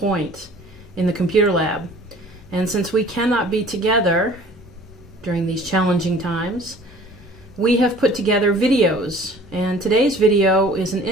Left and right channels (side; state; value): both; normal; correlation 0.49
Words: in the computer lab. And since we cannot be together during these challenging times, we have put together videos. And today's video is an